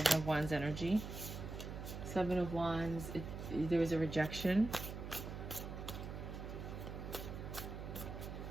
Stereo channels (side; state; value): right; noise; hum, 7 dB below the sound